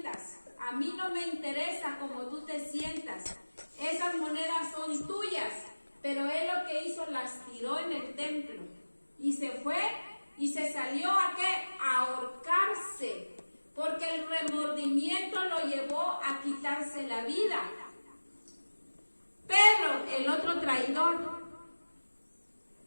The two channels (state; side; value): inverted; both; correlation -1.00